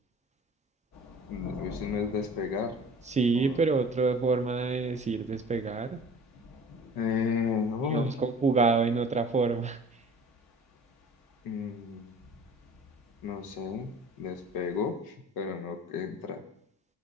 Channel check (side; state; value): both; normal; correlation 0.45